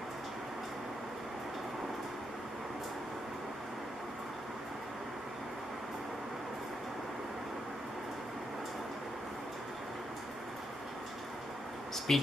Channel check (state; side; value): normal; both; correlation 0.81